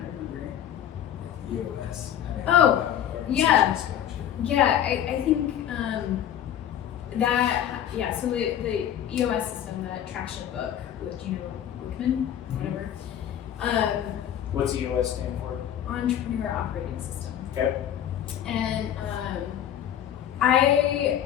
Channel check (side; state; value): right; quieter; 10.4 dB